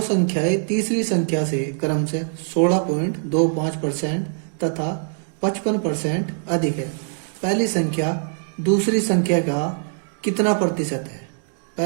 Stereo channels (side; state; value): left; silent; digital silence